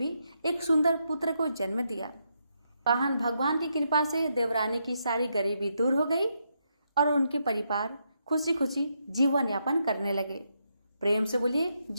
एक सुंदर पुत्र को जन्म दिया। वाहन भगवान की कृपा से देवरानी की सारी गरीबी दूर हो गई और उनके परिवार खुशी खुशी जीवन यापन करने लगे। प्रेम से बोलिए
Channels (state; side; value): inverted; both; correlation -0.80